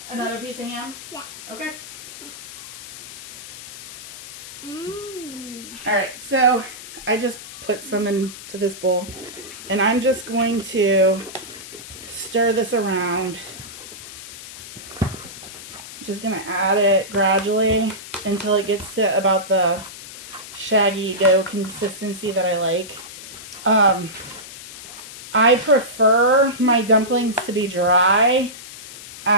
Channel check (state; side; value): noise; left; hiss, 13 dB below the sound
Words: Another piece of ham? Yeah. Okay. Mmm. Alright, so I just put some into this bowl, and I'm just going to stir this around. Just gonna add it gradually until it gets to about the shaggy dough consistency that I like. I prefer my dumplings to be dry